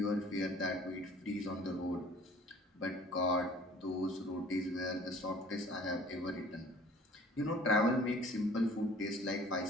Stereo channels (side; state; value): both; normal; correlation 0.50